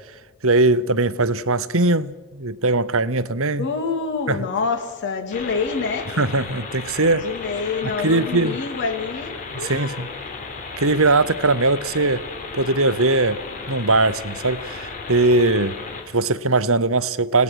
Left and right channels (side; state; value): both; normal; correlation -0.19